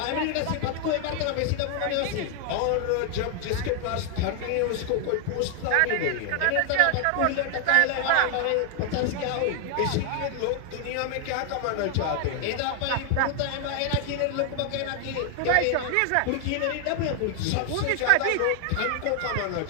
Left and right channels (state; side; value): different; both; correlation 0.00